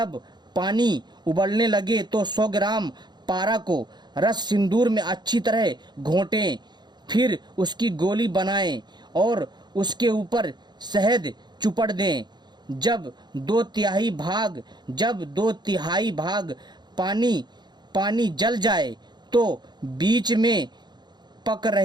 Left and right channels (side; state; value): left; late; 0.21 ms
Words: पानी उबलने लगे तो 100 ग्राम पारा को रस सिंदूर में अच्छी तरह घोंटें। फिर उसकी गोली बनाएं और उसके ऊपर शहद चुपड़ दें। जब 2/3 भाग पानी जल जाए तो बीच में पक